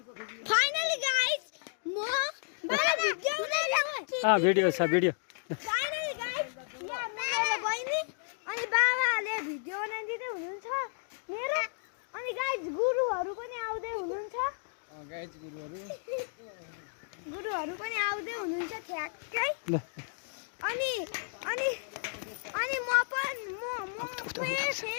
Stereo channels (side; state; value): right; silent; digital silence